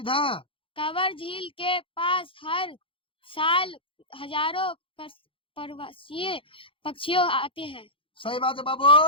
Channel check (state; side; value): late; right; 0.26 ms